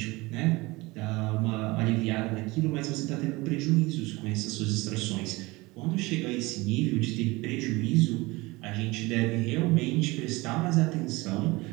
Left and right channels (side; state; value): left; quieter; 22.5 dB